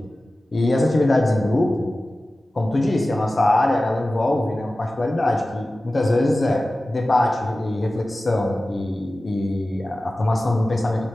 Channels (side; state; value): both; normal; correlation 0.96